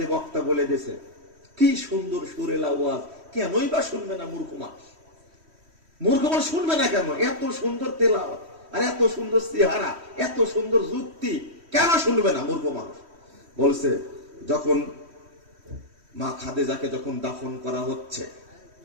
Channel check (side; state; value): left; late; 3.1 ms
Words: বক্তা বলে দিয়েছে, কি সুন্দর সুরেলা ওয়াজ, কেনই বা শুনবে না মূর্খ মানুষ? মূর্খ মানুষ শুনবে না কেন? এত সুন্দর তেলাওয়াত আর এত সুন্দর চেহারা, এত সুন্দর যুক্তি, কেন শুনবে না মূর্খ মানুষ? বলছে যখন মা খাদিজাকে যখন দাফন করা হচ্ছে